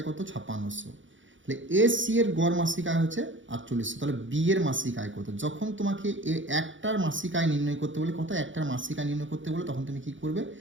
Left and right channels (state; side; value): late; left; 0.56 ms